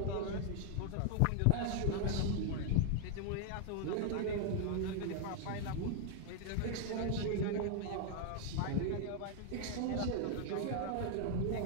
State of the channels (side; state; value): both; different; correlation 0.00